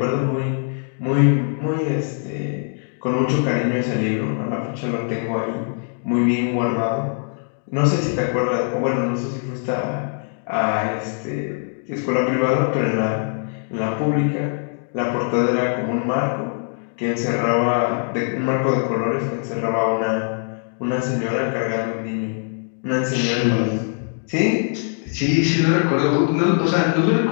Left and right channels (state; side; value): silent; right; 57 dB below the other